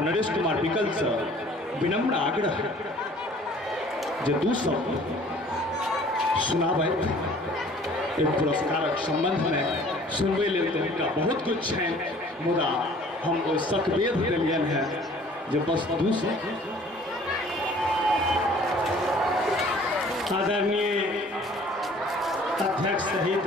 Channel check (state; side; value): normal; both; correlation 0.52